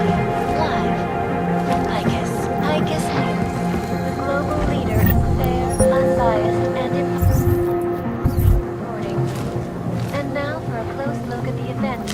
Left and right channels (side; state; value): both; identical; correlation 1.00